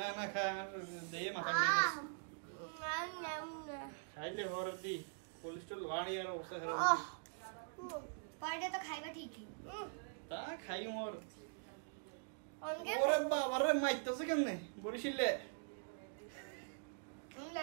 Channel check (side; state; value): left; silent; digital silence